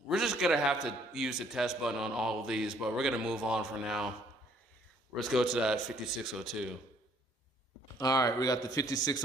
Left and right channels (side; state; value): both; normal; correlation 0.63